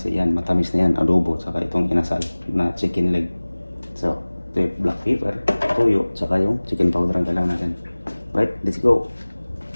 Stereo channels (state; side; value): inverted; both; correlation -1.00